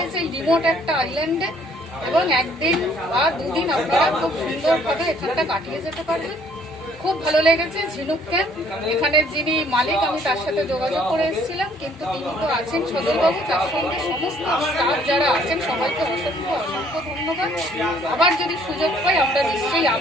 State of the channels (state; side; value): normal; both; correlation 0.61